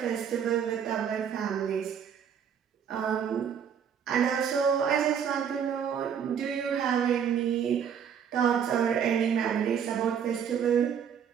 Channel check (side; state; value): left; quieter; 7.9 dB